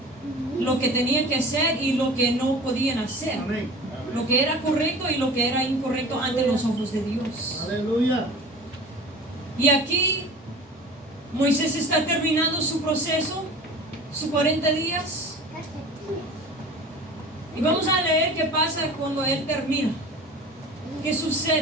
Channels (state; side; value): normal; both; correlation 0.39